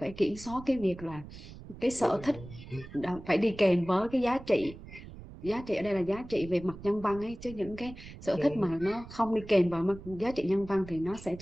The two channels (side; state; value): right; noise; rumble, 15 dB below the sound